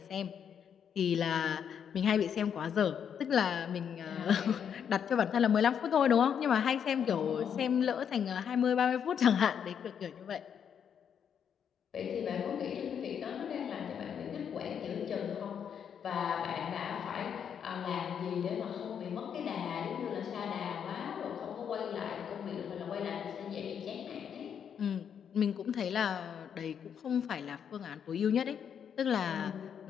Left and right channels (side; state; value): right; quieter; 8.0 dB